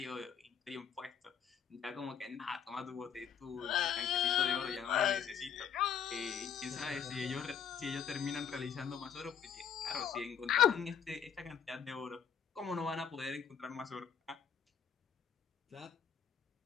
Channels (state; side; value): quieter; right; 7.9 dB